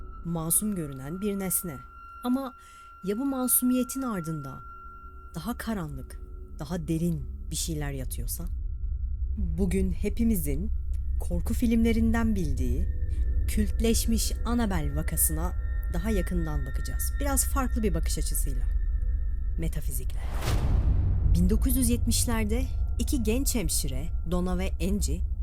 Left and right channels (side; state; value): both; identical; correlation 1.00